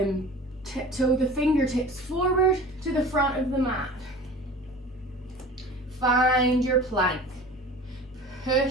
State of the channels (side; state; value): both; normal; correlation 0.40